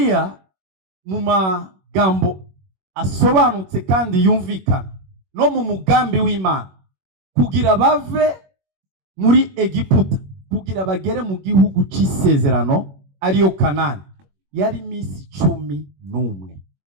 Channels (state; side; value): late; left; 21 ms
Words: mu magambo asobanutse kandi yumvikana no mu mugambi w'Imana, kugira bave muri Egiputa kugira bagere mu gihugu c'isezerano ariyo Kanani, yari misi 11.